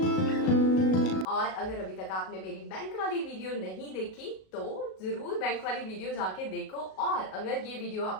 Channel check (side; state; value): right; late; 37 ms